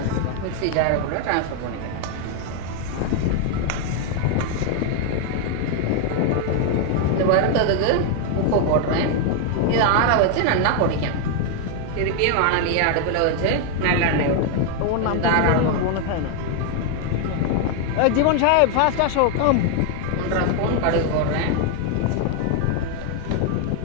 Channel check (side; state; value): both; different; correlation 0.01